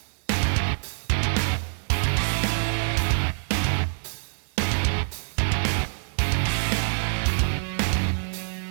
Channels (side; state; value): left; silent; digital silence